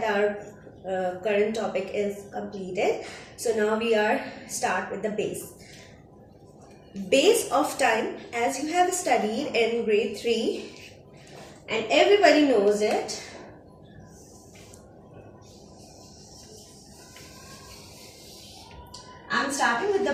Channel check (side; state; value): both; identical; correlation 1.00